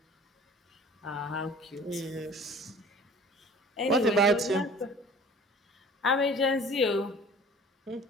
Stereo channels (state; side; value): normal; both; correlation 0.47